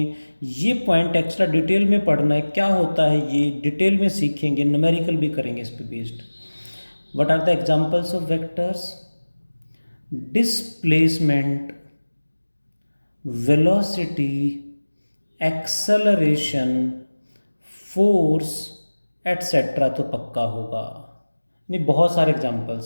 ये पॉइंट एक्स्ट्रा डिटेल में पढ़ना है. क्या होता है ये डिटेल में सीखेंगे, न्यूमेरिकल भी करेंगे इस पे based. What are the examples of vectors? Displacement, velocity, acceleration, force etcetera तो पक्का होगा. नहीं, बहुत सारे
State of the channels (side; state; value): both; inverted; correlation -1.00